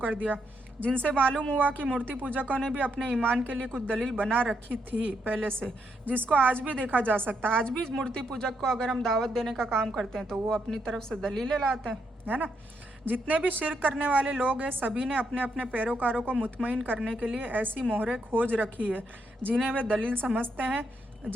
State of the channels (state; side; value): normal; both; correlation 0.78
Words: दिया, जिनसे मालूम हुआ कि मूर्ति पूजकों ने भी अपने ईमान के लिए कुछ दलील बना रखी थी पहले से, जिसको आज भी देखा जा सकता है। आज भी मूर्ति पूजक को अगर हम दावत देने का काम करते हैं तो वो अपनी तरफ से दलीलें लाते हैं, है ना। जितने भी शिर्क करने वाले लोग हैं सभी ने अपने अपने पैरोकारों को मुतमईन करने के लिए ऐसी मोहरें खोज रखी है जिन्हें वे दलील समझते हैं